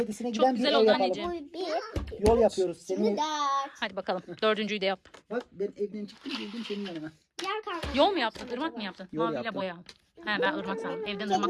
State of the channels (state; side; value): identical; both; correlation 1.00